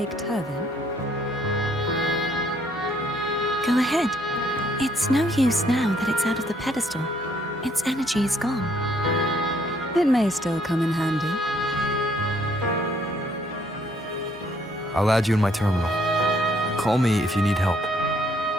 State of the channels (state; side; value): normal; both; correlation 0.66